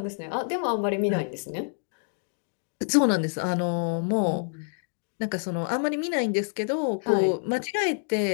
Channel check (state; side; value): silent; right; 60 dB below the other